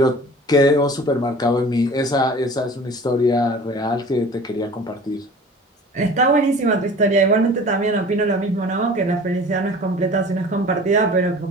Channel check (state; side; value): normal; both; correlation 0.43